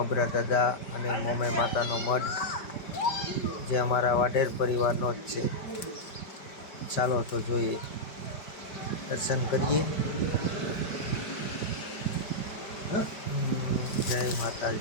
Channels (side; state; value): right; late; 5.1 ms